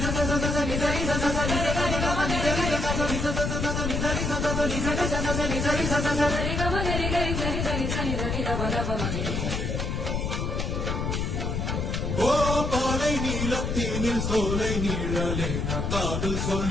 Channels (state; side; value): noise; left; rumble, 1 dB below the sound